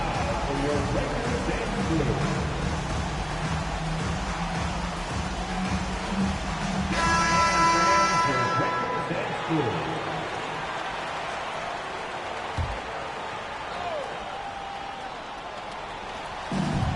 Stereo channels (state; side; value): identical; both; correlation 1.00